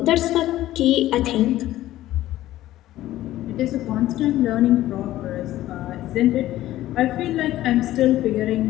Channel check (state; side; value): quieter; right; 14.7 dB